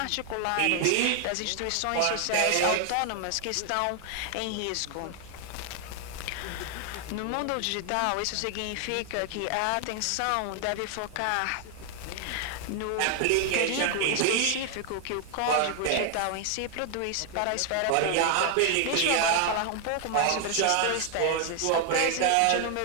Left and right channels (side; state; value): both; different; correlation 0.00